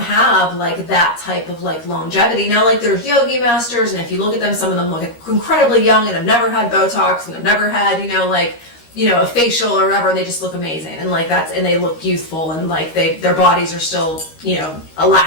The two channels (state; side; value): late; right; 13 ms